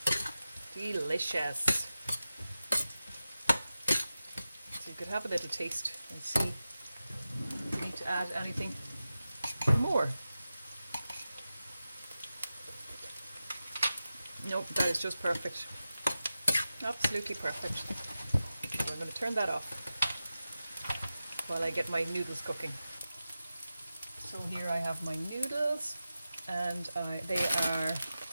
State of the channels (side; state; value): both; inverted; correlation -0.93